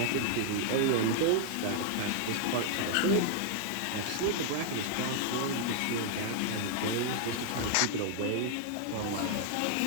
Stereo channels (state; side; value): different; both; correlation 0.00